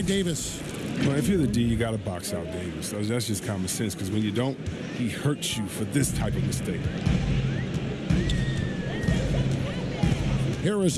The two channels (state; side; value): identical; both; correlation 1.00